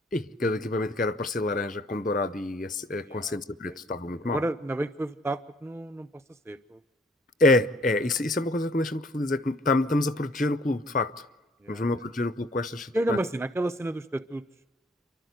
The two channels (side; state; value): both; normal; correlation 0.59